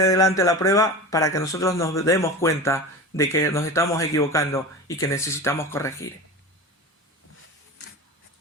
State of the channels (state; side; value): normal; both; correlation 0.29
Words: delante la prueba para que nosotros nos demos cuenta de que nos estamos equivocando y que necesitamos corregir.